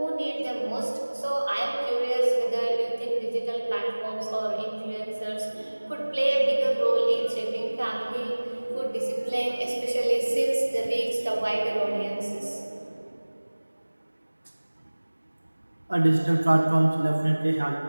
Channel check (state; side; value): inverted; both; correlation -1.00